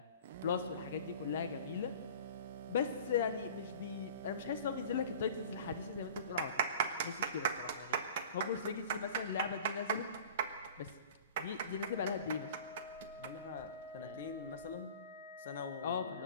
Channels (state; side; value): inverted; both; correlation -0.42